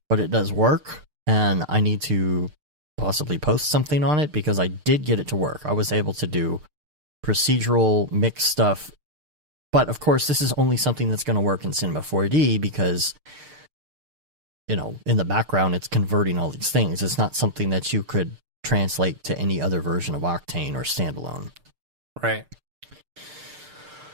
but it does work, and I need to possibly post something on it because I did get it to work. I was able to do procedural mix stuff. But, of course, this is only something that's going to work in Cinema 4D because, you know, in the background, it's converting all these things. It's not something that you could translate to any other version of Octane or standalone. Right.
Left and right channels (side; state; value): left; late; 6.6 ms